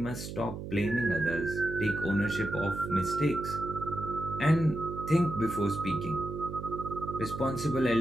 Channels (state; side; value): noise; right; hum, 8 dB below the sound